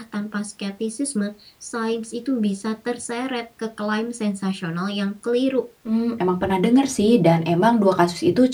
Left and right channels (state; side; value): identical; both; correlation 1.00